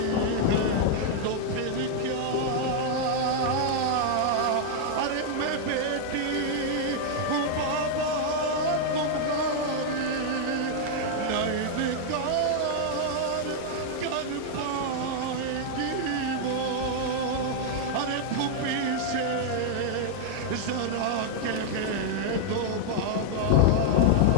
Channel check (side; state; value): both; different; correlation -0.01